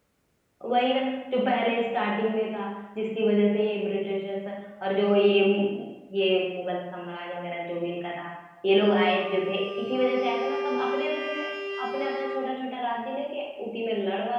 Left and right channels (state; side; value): identical; both; correlation 1.00